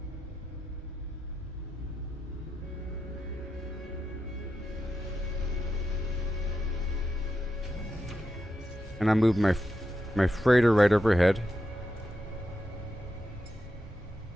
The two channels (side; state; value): both; normal; correlation 0.86